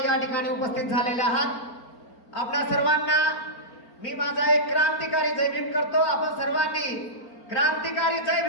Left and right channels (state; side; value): late; right; 4.4 ms